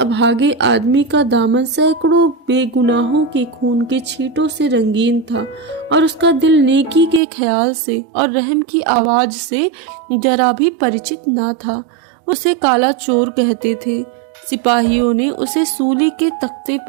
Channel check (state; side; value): drops out; left; at 7.2 s